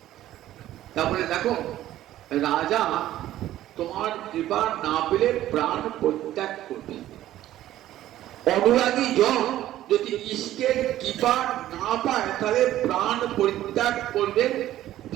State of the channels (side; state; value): left; quieter; 13.6 dB